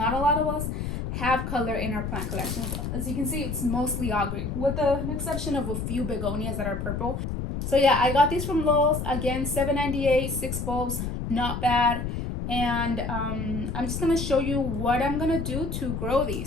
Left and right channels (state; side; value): noise; left; rumble, 4 dB below the sound